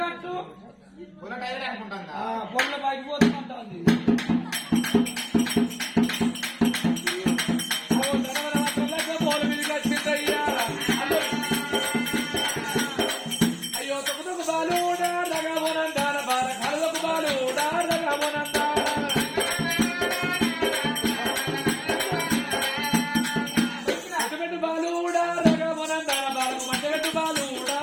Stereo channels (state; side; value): identical; both; correlation 1.00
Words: పట్టు పొల్ల బయటకు పోతుంటుంది అయ్యో తొక్కుతుకు బాలు రగమోనందాన బాల కళ్ళకు బాలు రగమోనందాన మట్టబెట్టు బాలు రగమోనందాన బాలకు మట్టబెట్టు బాలు